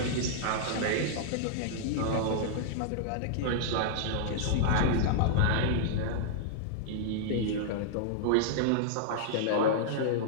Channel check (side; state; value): both; different; correlation -0.02